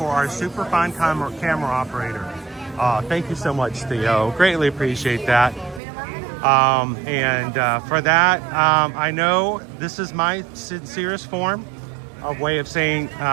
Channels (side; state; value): left; drops out; at 5.8 s